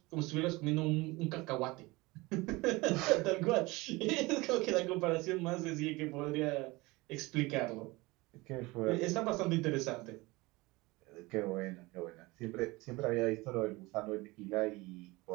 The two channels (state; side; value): quieter; left; 22.6 dB